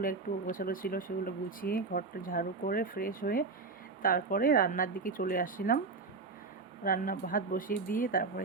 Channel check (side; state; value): left; quieter; 4.2 dB